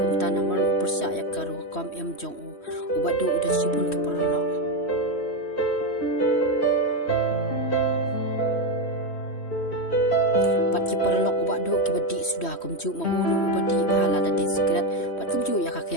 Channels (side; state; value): right; late; 3.1 ms